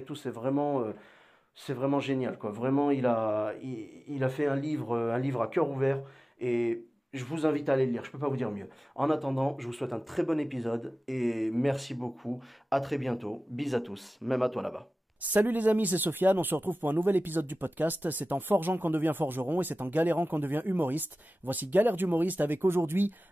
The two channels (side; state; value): both; normal; correlation 0.96